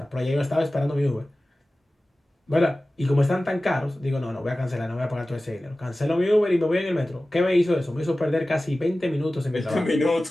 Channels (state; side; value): normal; both; correlation 0.96